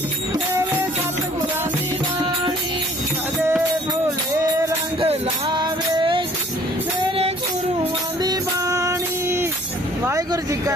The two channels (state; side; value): normal; both; correlation 0.56